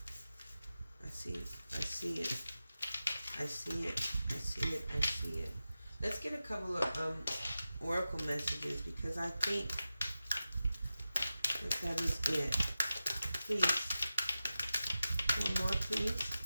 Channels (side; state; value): both; inverted; correlation -0.93